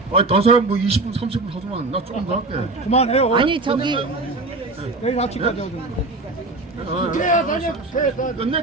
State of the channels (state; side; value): quieter; left; 3.1 dB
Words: 아니 다른 사람 뭐 20분 30분 하지만 나 조금 더 할게. 그만해요. 아니 저기 내일 아침까지 하던데. 국회 사냐 국회 사.